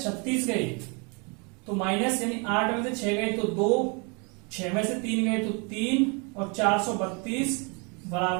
36 गए तो माइनस यानी 8 में से 6 गए तो 2, 6 में से 3 गए तो 3 और 432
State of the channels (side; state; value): left; quieter; 32.8 dB